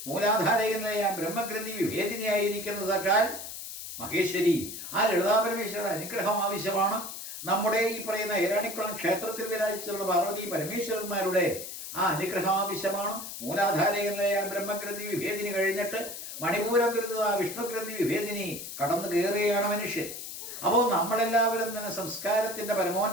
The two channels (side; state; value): left; noise; hiss, 9 dB below the sound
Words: മൂലാധാരകനായ ബ്രഹ്മഗ്രന്ഥി വിഭേദിനിയായിരിക്കുന്ന സാക്ഷാൽ മഹേശ്വരി ആ ലളിതാപരമേശ്വരിയുടെ അനുഗ്രഹം ആവശ്യമാണ്. നമ്മുടെ ഈ പറയുന്ന ഏരാണിക്കുളം ക്ഷേത്രത്തിൽ വിരാജിച്ചുള്ള പാർവതി പരമേശ്വരന്മാരുടെ ആ അനുഗ്രഹം ആവശ്യമാണ്. മൂലാധാരകനായ ബ്രഹ്മഗ്രന്ഥി വിഭേദിനി കഴിഞ്ഞിട്ട് മണിപൂരകൃത വിഷ്ണുഗ്രന്ഥി വിഭേദിനി കടന്നു കയറുകയാണ് മനുഷ്യൻ. അപ്പോൾ നമ്മളെല്ലാവരും തന്നെ സംസ്കാരത്തിൻ്റെ